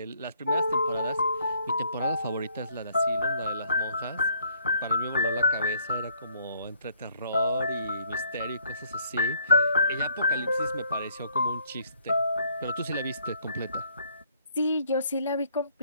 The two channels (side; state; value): both; inverted; correlation -0.66